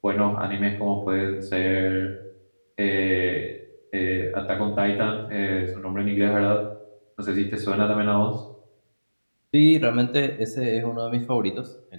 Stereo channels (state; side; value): inverted; both; correlation -1.00